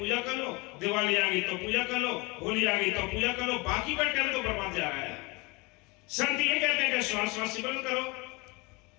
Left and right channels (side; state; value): right; quieter; 26.3 dB